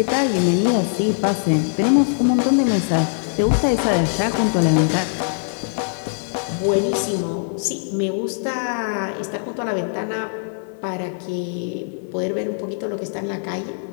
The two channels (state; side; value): silent; right; digital silence